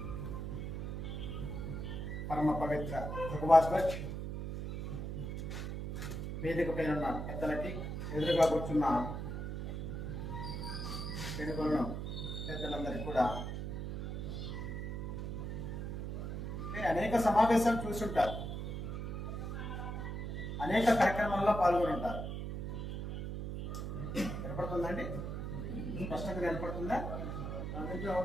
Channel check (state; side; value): noise; right; hum, 4 dB below the sound